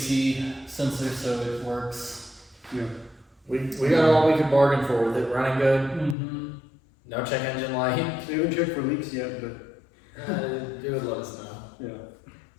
sensor so it works. We got all we could bargain for with it running good. Mm-hmm. No check engine light. They haven't checked for leaks yet, but You would let us know. yeah.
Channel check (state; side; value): drops out; right; at 6.2 s